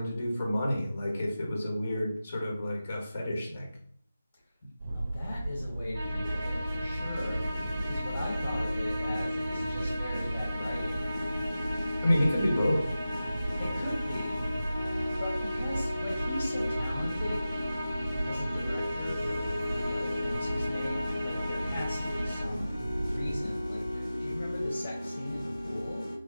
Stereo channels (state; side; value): inverted; both; correlation -0.94